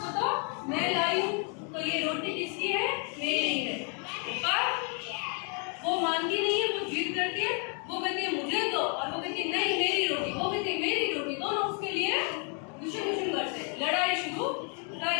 तो मैं लाई हूँ, तो ये रोटी किसकी है? मेरी है। पर वो मानती नहीं है, वो जिद करती है, वो कहती है मुझे दो, और वो कहती है नहीं मेरी रोटी, वो कहती है मेरी रोटी। दोनों उसके लिए दुश्मन करते, लड़ाई शुरू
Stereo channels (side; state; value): right; quieter; 39.3 dB